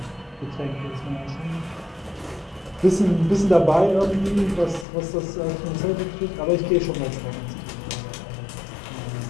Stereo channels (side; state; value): right; drops out; at 4.9 s